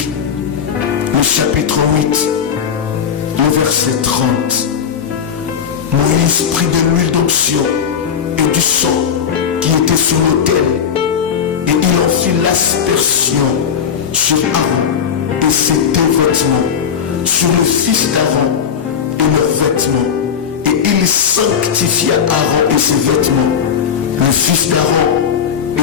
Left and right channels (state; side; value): quieter; right; 7.6 dB